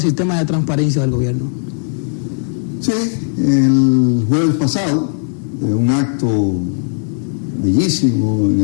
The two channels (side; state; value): right; silent; digital silence